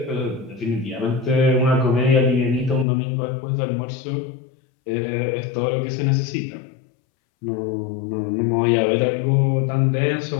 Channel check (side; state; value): right; drops out; at 2.9 s